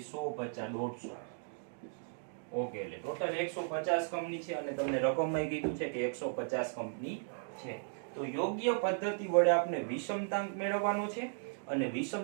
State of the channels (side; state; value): left; silent; digital silence